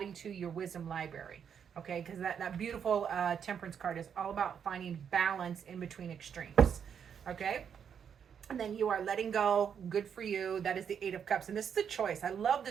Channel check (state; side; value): quieter; left; 7.7 dB